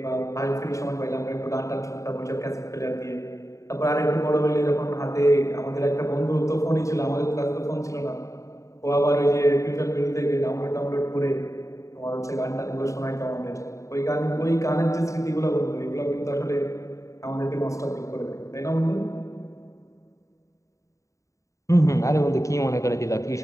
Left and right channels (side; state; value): right; late; 0.15 ms